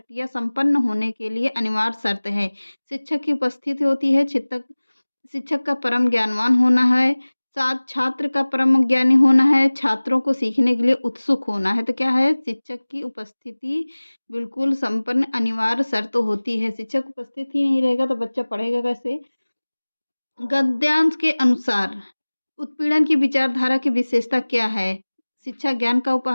संपन्न होने के लिए अनिवार्य शर्त है। शिक्षक की उपस्थिति होती है, शिक्षक का परम ज्ञानवान होना है, साथ छात्र का परम ज्ञानी होना है, छात्रों को सीखने के लिए उत्सुक होना है। तो क्या है? शिक्षक की उपस्थिति बिल्कुल संपन्न अनिवार्य शर्त होती है। शिक्षक उपस्थित ही नहीं रहेगा तो बच्चा पढ़ेगा कैसे? गद्यांश के अनुसार उत्पीड़न की विचारधारा की विशेषता क्या है? शिक्षा ज्ञान का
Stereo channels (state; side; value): inverted; both; correlation -1.00